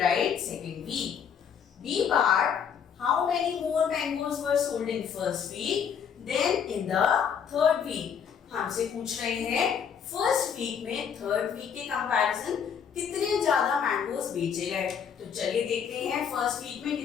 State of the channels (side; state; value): right; quieter; 7.5 dB